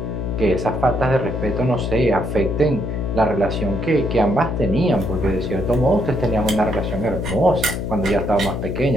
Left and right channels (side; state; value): left; noise; hum, 4 dB below the sound